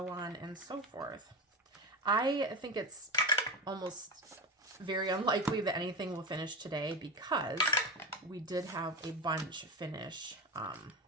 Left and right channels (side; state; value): both; normal; correlation 0.22